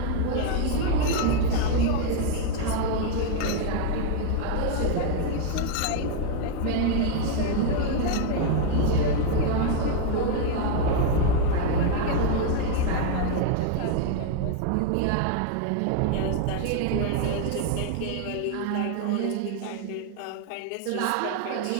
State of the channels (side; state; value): both; different; correlation 0.00